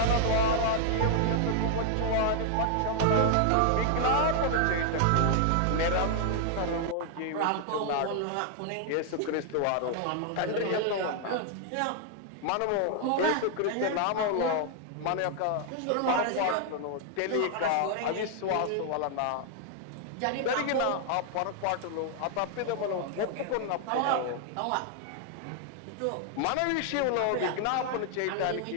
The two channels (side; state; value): both; different; correlation 0.00